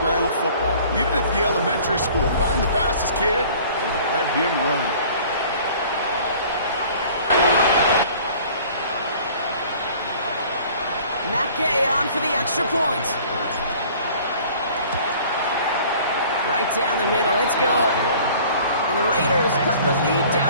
football. Even at the elementary school, find the fastest kid and let him run. Mackay on for the extra point. Right down the middle, it's good. And the Raiders cut the lead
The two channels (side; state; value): both; inverted; correlation -0.50